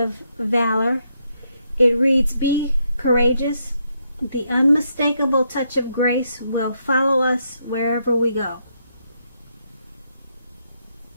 valor, it reads, be courageous. The unmistakable touch of grace will follow us wherever we go.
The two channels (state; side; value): inverted; both; correlation -0.78